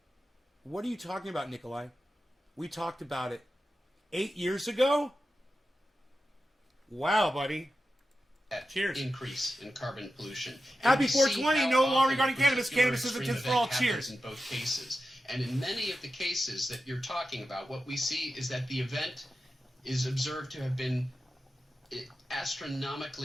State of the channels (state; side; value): normal; both; correlation 0.92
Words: What are you talking about, Nikolai? We talked about it 8 years ago? Wow, buddy. Cheers. Increase in carbon pollution. Happy And we see 420, how no law often regarding a cannabis. particular Cannabis is a extreme tip for all. event happens Cheers. in both cases. And in many of the cases that you're talking about, what we see is that the event is observed to have been